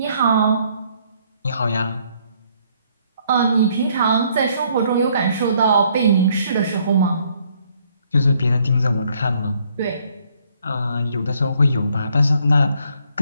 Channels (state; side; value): inverted; both; correlation -0.67